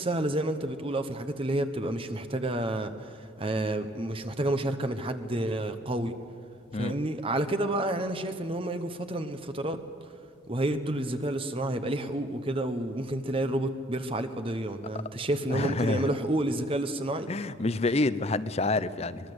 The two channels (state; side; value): normal; both; correlation 0.60